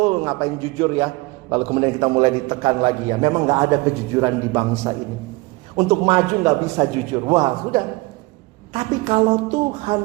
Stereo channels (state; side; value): quieter; left; 23.3 dB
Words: ngapain jujur ya? Lalu kemudian kita mulai ditekan lagi ya. Memang gak ada kejujuran di bangsa ini. Untuk maju gak bisa jujur. Wah, sudah. Tapi kalau